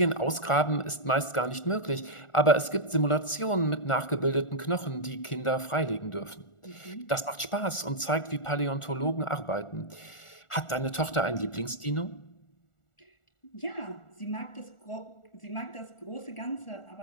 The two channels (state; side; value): late; right; 1.4 ms